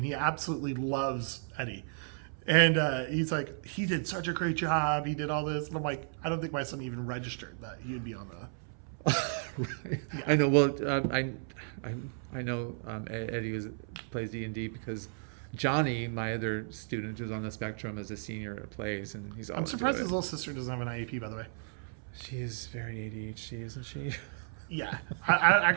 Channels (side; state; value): left; silent; 55 dB below the other